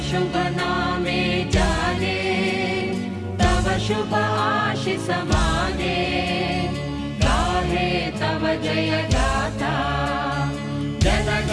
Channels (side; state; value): both; identical; correlation 1.00